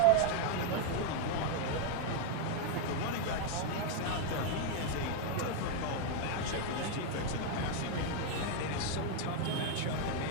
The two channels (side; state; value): both; different; correlation 0.01